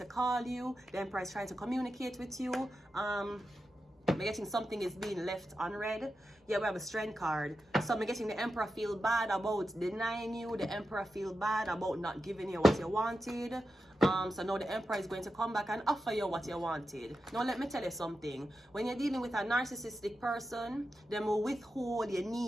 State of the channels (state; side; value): normal; both; correlation 0.90